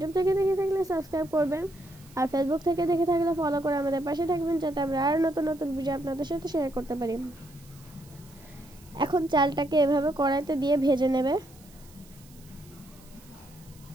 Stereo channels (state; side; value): noise; right; hiss, 25 dB below the sound